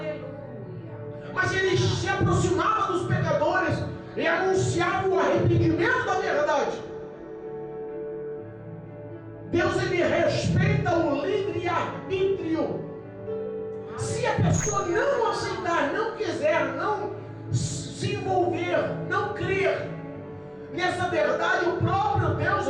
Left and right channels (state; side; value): identical; both; correlation 1.00